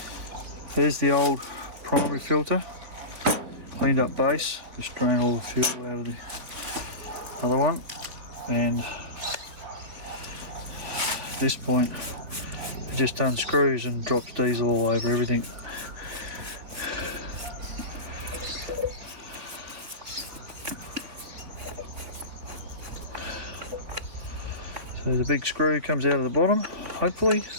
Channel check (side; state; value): left; late; 4.0 ms